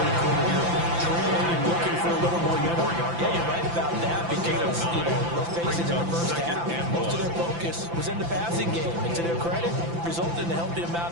quarter here. Trailing and looking for a little more yardage. Yeah, you're right about that because, let's face it, in the first half, most of their focus was in the passing game. And to their credit, resulted in a healthy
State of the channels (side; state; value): left; late; 5.9 ms